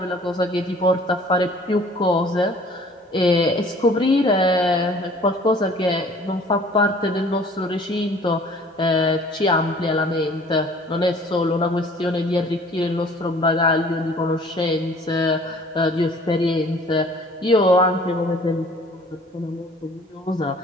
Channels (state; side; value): normal; both; correlation 0.52